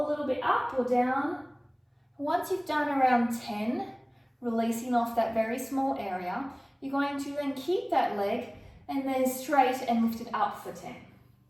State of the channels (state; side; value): identical; both; correlation 1.00